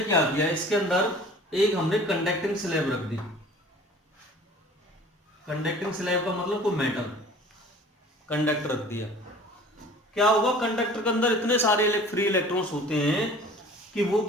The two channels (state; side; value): normal; both; correlation 0.46